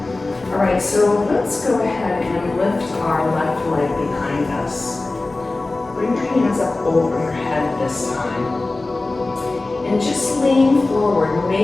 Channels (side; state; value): right; quieter; 3.2 dB